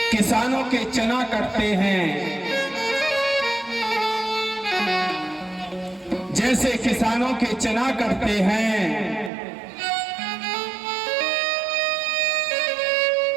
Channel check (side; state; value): left; drops out; at 9.3 s